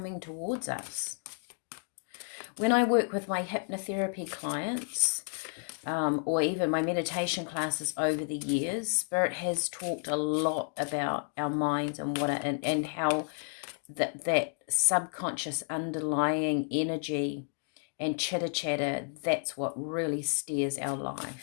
towards us. When I work with my hypnotherapy clients, or even my meditation classes over the years, Spirit has talked a lot about our minds and and how that subconscious underlying energy and chitter chatter, that's what really steers our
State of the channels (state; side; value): silent; right; 57 dB below the other